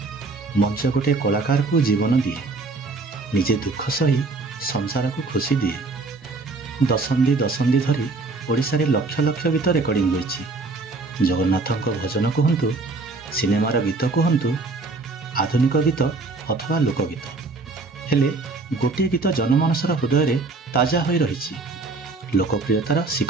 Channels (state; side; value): quieter; left; 3.6 dB